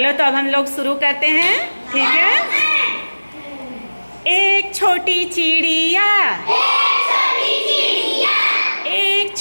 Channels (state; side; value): inverted; both; correlation -1.00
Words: तो अब हम लोग शुरू करते हैं, ठीक है? एक छोटी चिड़िया, एक